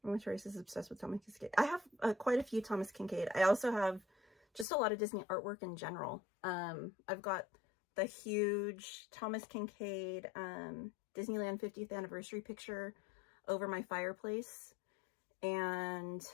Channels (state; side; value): drops out; right; at 4.7 s